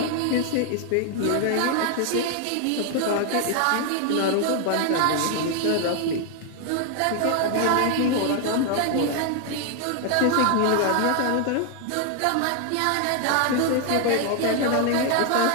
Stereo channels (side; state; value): both; different; correlation 0.00